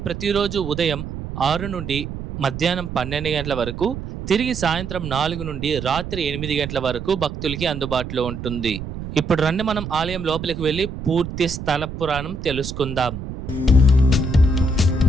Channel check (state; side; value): noise; right; rumble, 8 dB below the sound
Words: ప్రతిరోజు ఉదయం 6 నుండి మధ్యాహ్నం 12 గంటల వరకు, తిరిగి సాయంత్రం 4 నుండి రాత్రి 8 గంటల వరకు భక్తులకి అందుబాటులో ఉంటుంది. ఇప్పుడు రండి మనం ఆలయం లోపలికి వెళ్ళి పూర్తి స్థల పురాణం తెలుసుకుందాం.